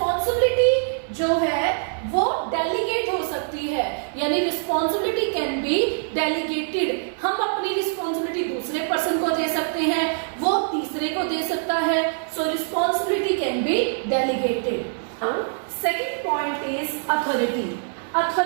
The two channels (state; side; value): silent; left; digital silence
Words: जो है वो डेलीगेट हो सकती है, यानी रिस्पॉन्सिबिलिटी कैन बी डेलीगेटेड। हम अपनी रिस्पॉन्सिबिलिटी दूसरे पर्सन को दे सकते हैं, वो तीसरे को दे सकता है। सो responsibility can be delegated. Second point is authority.